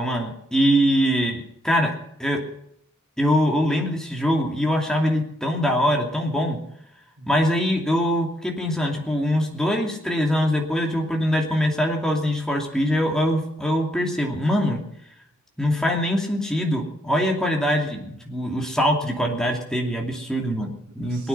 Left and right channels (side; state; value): both; normal; correlation 0.75